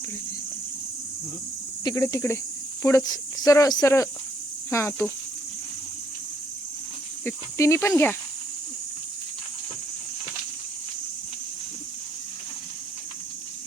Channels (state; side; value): normal; both; correlation 0.70